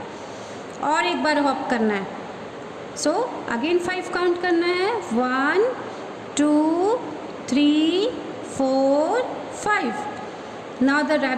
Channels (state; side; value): identical; both; correlation 1.00